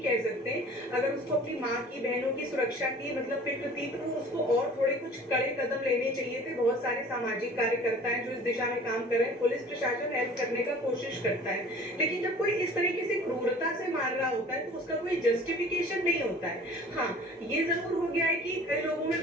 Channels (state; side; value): normal; both; correlation 0.47